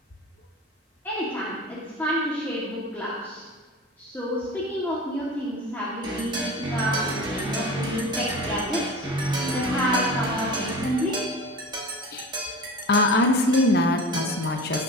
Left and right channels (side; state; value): both; normal; correlation 0.34